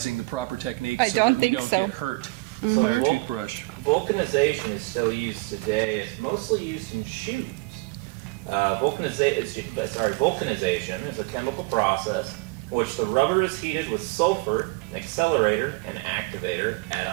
the proper technique I so don't that we think don't so. get hurt So by our vul- toothbrush. Vulcanization is still used today. It's mostly used in shoes. Vulcanization is a chemical process in which the rubber is heated with sulfur, an accelerator, and activator at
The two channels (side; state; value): left; quieter; 25.3 dB